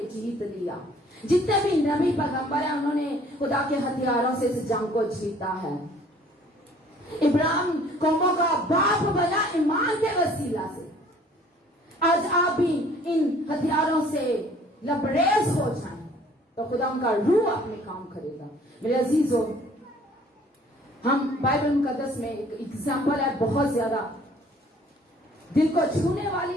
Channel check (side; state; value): both; normal; correlation 0.55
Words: جیت لیا. جتنے بھی نبی پیغمبر ہیں انہوں نے خدا کے ہتھیاروں سے اس جنگ کو جیتا ہے. ابراہیم قوموں کا باپ بنا ایمان کے وسیلہ سے. آج آپ بھی ان ہتھیاروں سے لبریز ہو جائیں تو خدا ان کا روح اپنے کام کرے گا. میرے عزیزوں, ہم بائبل مقدس میں ایک ایگزامپل ہے بہت زیادہ دل کو چھونے